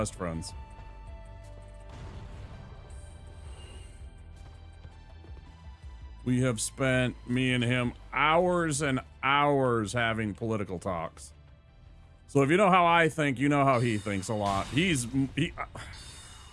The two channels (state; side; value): identical; both; correlation 1.00